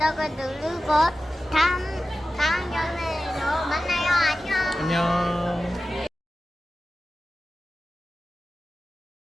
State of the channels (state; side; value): normal; both; correlation 0.94